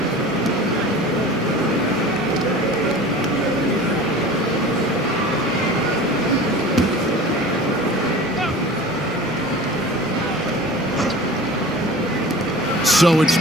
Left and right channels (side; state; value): both; normal; correlation 0.39